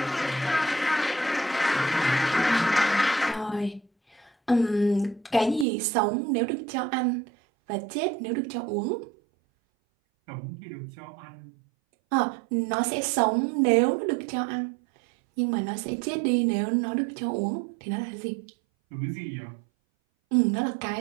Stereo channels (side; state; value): left; drops out; at 5.7 s